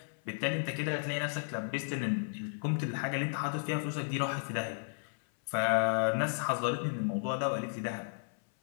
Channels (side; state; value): right; silent; 55 dB below the other